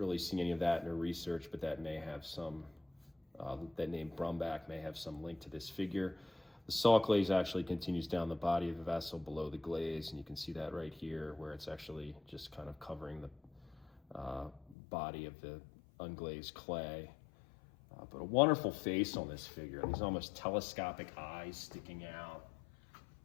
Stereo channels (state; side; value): drops out; right; at 14.8 s